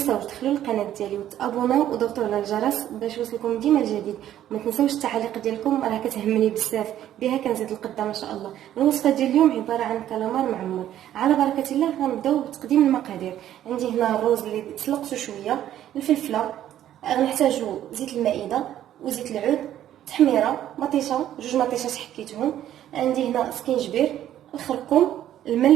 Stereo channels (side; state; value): left; quieter; 11.8 dB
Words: تدخلوا للقناة ديالي وتابوناو وضغطوا على الجرس باش يوصلكم ديما الجديد. وما تنساوش التعاليق ديالكم، راه كتهمني بزاف، بها كنزيد القدام ان شاء الله. الوصفة ديال اليوم عبارة عن كالامار معمر. على بركة الله غنبداو بتقديم المقادير. عندي هنا الروز اللي تسلقته شويه، الفلفله، غنحتاجو زيت المائده وزيت العود، تحميره، مطيشه، جوج مطيشات حكيتهم. عندي هنا سكينجبير، الخرقوم،